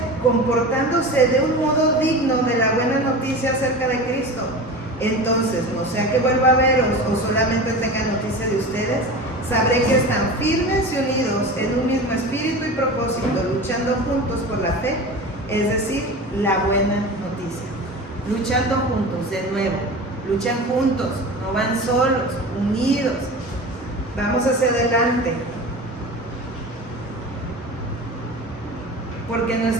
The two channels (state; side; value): normal; both; correlation 0.32